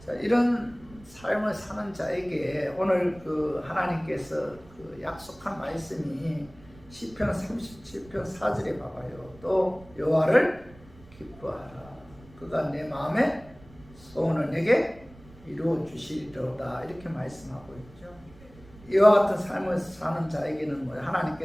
자, 이런 삶을 사는 자에게 오늘 하나님께서 약속한 말씀이 시편 37편 4절에 봐봐요. 또 여호와를 기뻐하라. 그가 내 마음의 소원을 내게 이루어 주시리로다. 이렇게 말씀하고 있죠. 이와 같은 삶을 사는 자에게는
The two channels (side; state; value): right; noise; rumble, 23 dB below the sound